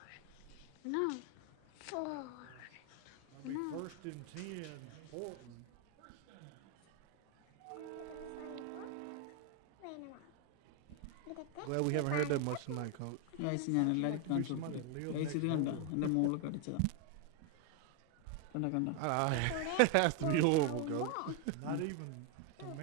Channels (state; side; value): different; both; correlation 0.01